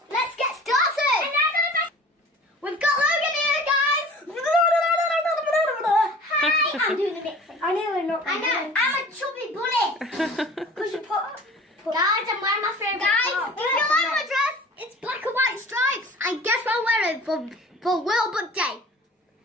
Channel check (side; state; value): both; normal; correlation 0.44